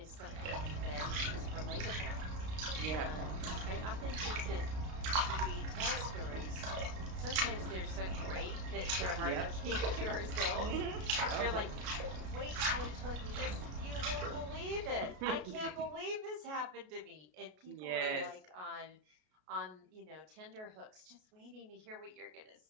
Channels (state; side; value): late; left; 33 ms